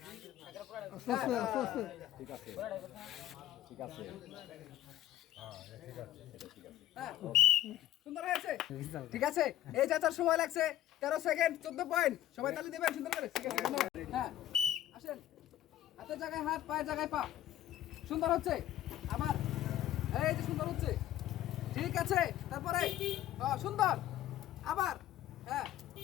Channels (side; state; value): right; quieter; 13.0 dB